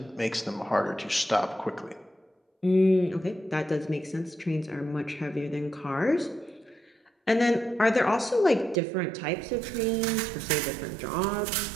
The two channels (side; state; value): left; drops out; at 8.8 s